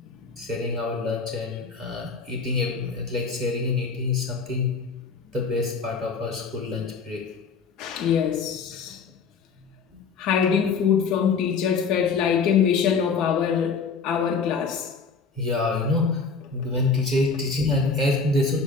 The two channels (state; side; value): quieter; right; 5.1 dB